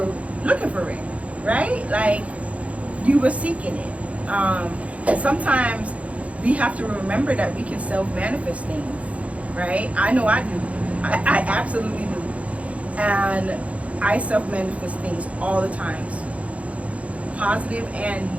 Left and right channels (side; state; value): left; late; 0.065 ms